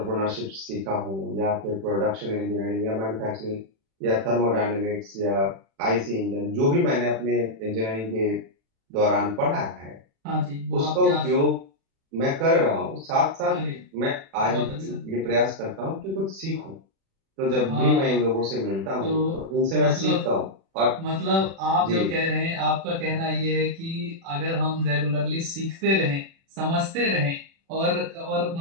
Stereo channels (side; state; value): left; late; 36 ms